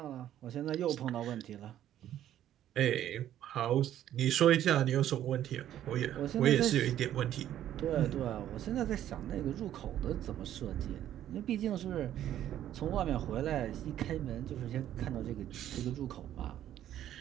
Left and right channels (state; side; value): quieter; left; 11.7 dB